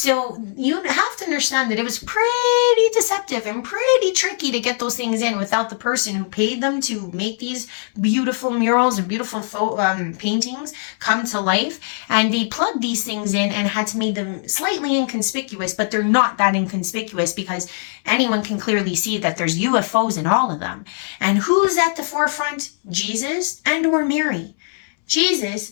you have to understand that it was pretty deceptive and pretty tricky to get those things in without the person who paid them to make these beautiful murals and beautiful paintings come to life. And they plugged these things in and had to make them slightly inconspicuous, but they're not that inconspicuous because anyone can clearly see that there's UFOs in all of them. And who's at the forefront? Jesus and or Mary. Jesus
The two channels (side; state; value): right; silent; 65 dB below the other